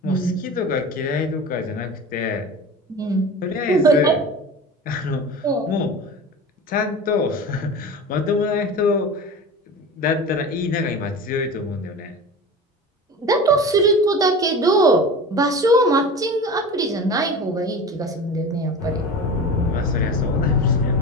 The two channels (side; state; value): both; normal; correlation 0.33